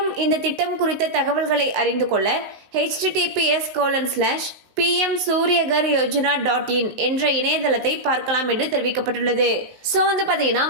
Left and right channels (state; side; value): late; left; 19 ms